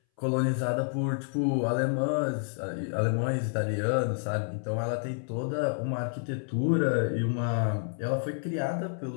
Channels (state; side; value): silent; right; 58 dB below the other